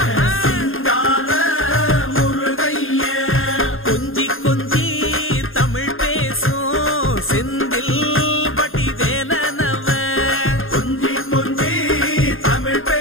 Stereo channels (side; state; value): right; late; 0.60 ms